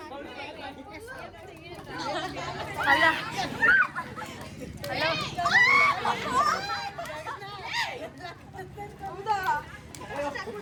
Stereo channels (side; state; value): both; identical; correlation 1.00